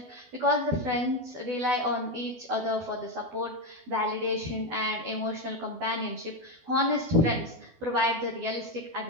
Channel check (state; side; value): late; left; 12 ms